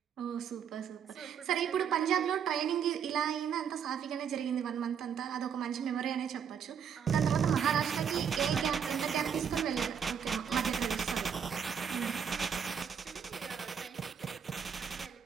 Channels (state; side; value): quieter; left; 7.5 dB